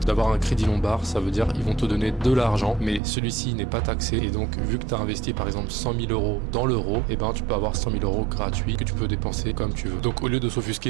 d'avoir un crédit lombard. Ça veut dire ils vont te donner de l'argent, mais celui-ci n'est pas taxé. Et donc, vu que tu as investi par exemple 100 000 euros dans l'euro, tu peux avoir 100 000 euros gratuits que tu peux dépenser comme tu veux. Donc, au lieu de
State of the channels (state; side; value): drops out; left; at 3.0 s